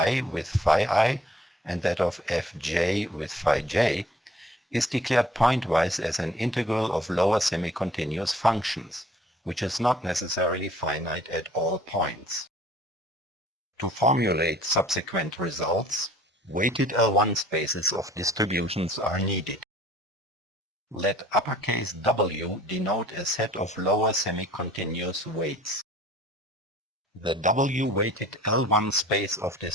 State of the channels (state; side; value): normal; both; correlation 0.54